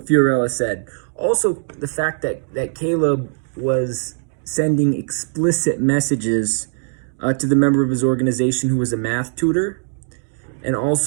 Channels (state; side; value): silent; left; digital silence